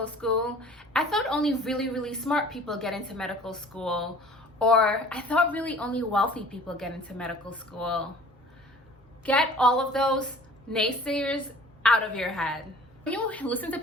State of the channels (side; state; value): both; normal; correlation 0.48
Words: school? I thought only really, really smart people get into medical school. Or I thought really only wealthy people get into medical school. Get all of those naysayers out of your head. When you listen to